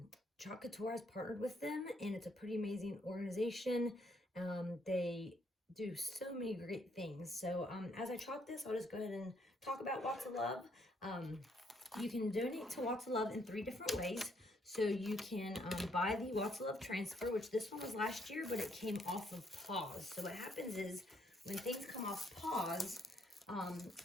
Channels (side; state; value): both; normal; correlation 0.70